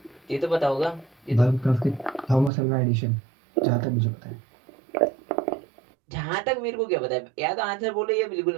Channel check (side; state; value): left; drops out; at 2.5 s